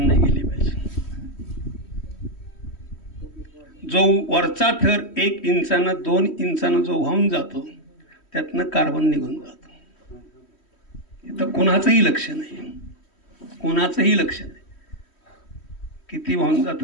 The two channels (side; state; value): right; late; 3.1 ms